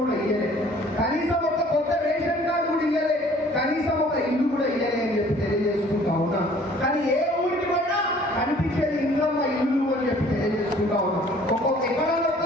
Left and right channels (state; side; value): normal; both; correlation 0.54